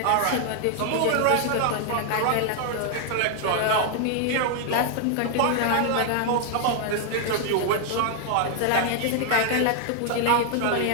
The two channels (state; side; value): different; both; correlation 0.00